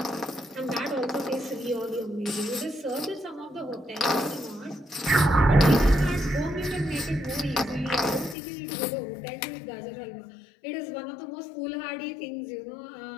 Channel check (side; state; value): right; drops out; at 8.3 s